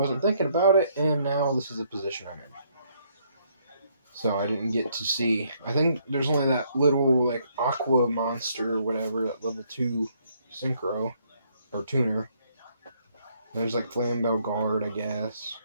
thinking about it, and now this is the position I'm in. So I didn't get to see. I think there's only that little, like, aqua monster or whatever, that level 2 synchro, or tuner. There's, like, Flambeau Guard, I guess.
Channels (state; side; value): inverted; both; correlation -0.69